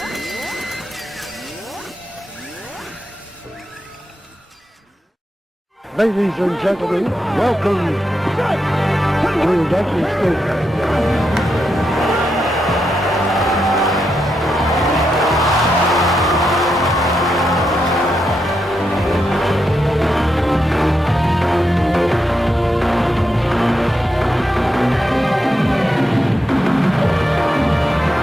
Ladies and gentlemen, welcome to Dusty State.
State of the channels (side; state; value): both; normal; correlation 0.84